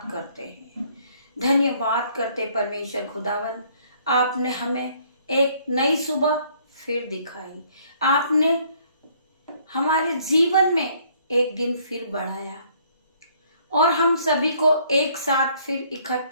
करते हैं, धन्यवाद करते परमेश्वर खुदावन, आपने हमें एक नई सुबह फिर दिखाई, आपने हमारे जीवन में एक दिन फिर बढ़ाया और हम सभी को एक साथ फिर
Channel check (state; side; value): inverted; both; correlation -0.63